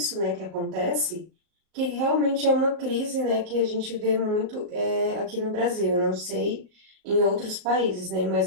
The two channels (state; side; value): late; left; 38 ms